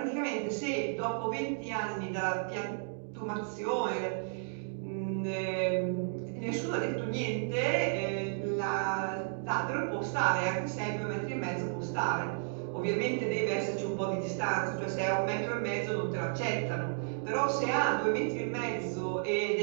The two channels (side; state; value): left; silent; digital silence